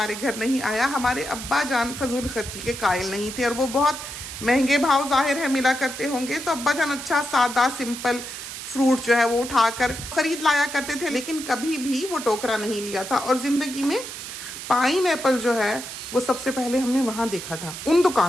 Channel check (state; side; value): noise; right; hiss, 9 dB below the sound